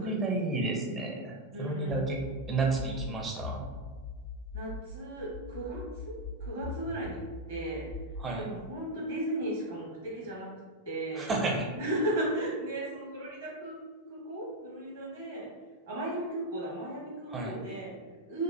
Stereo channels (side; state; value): both; normal; correlation 0.03